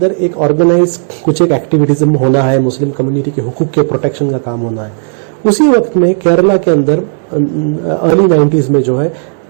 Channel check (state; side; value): silent; left; digital silence